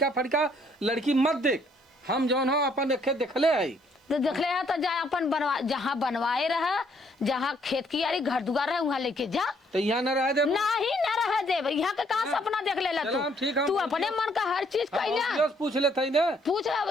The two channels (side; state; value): both; normal; correlation 0.67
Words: फड़का लड़की मत देख, हम जौन हो अपन देखे देखले है तो देखले है तो जा अपन बनवा जहाँ बनवाए रहा जहाँ खेत की यारी घर दुआर है वहाँ लेके जा। तो यहाँ न रह दे नहीं न रह दे यहाँ के कहाँ सपना देख ले तू अपने मन का हर चीज कहना पूछ लेते ना पूछ रहा